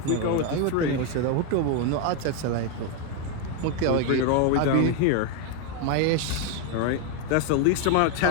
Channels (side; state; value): both; different; correlation 0.01